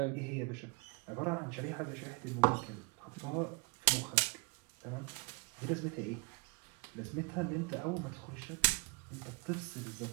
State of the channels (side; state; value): left; quieter; 28.1 dB